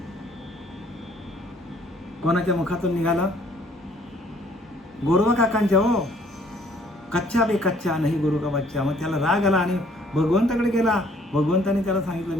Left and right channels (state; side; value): normal; both; correlation 0.61